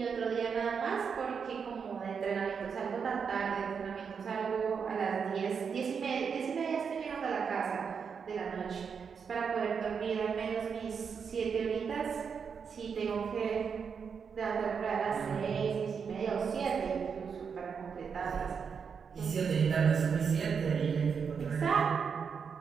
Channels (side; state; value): left; quieter; 6.3 dB